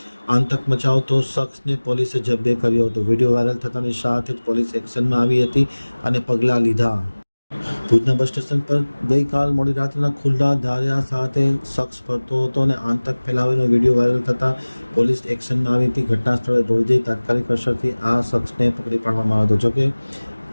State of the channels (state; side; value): inverted; both; correlation -1.00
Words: આતંક મચાવતો શખ્સને પોલીસે જબ્બે કર્યો હતો. વિડીયો વાયરલ થતાની સાથે જ પોલીસ એક્શનમાં આવી હતી અને પગલાં લીધા. ભુજના બસ સ્ટેશન પર ગઈકાલ મોડી રાત્રિના ખુલ્લા ધાર્યા સાથે શખ્સ ફરતો હતો અને આતંક ફેલાવીનો વિડીયો વાયરલ થતાં પોલીસ એક્શનમાં આવી હતી. ઘટના સ્થળે દોડી જઈ તાત્કાલિક અસરથી આ શખ્સને પકડી પાડવામાં આવ્યો હતો. જોકે